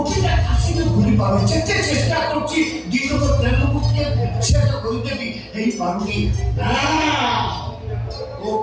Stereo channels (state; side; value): identical; both; correlation 1.00